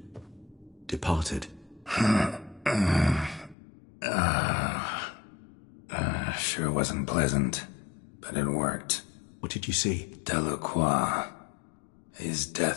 departed. Sure wasn't pleasant, but it worked. What did you see? Delacroix. His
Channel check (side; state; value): right; drops out; at 3.6 s